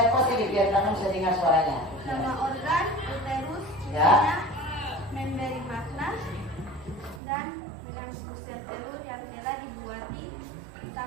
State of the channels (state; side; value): drops out; left; at 7.2 s